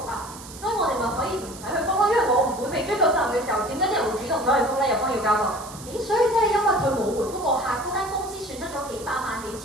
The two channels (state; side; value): noise; right; hiss, 16 dB below the sound